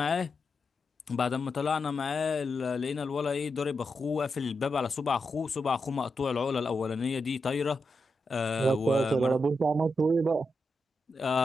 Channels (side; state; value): both; normal; correlation 0.86